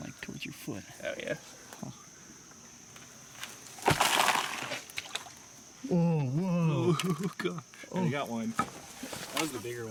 towards your foot. Oh yeah. Oh, whoa. Oh god. Oh, you got one. That was the bigger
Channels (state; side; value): identical; both; correlation 1.00